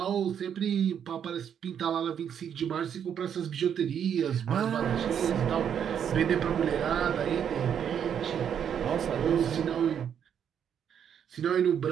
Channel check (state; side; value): quieter; left; 8.5 dB